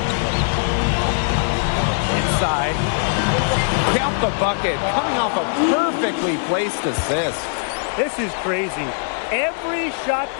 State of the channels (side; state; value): right; silent; 65 dB below the other